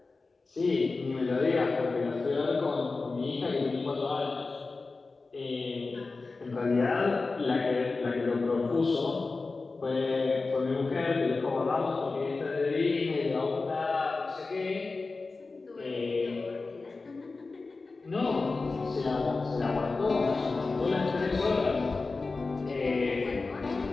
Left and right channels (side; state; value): right; quieter; 3.8 dB